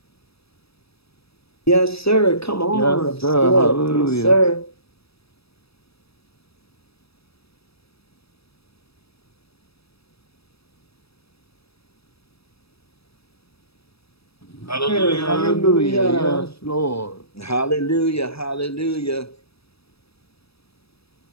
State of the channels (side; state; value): right; late; 0.78 ms